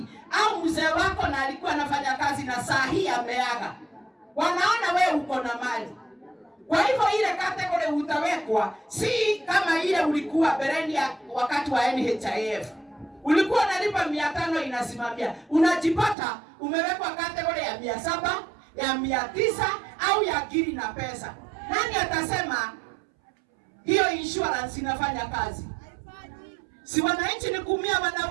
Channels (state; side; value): drops out; left; at 16.2 s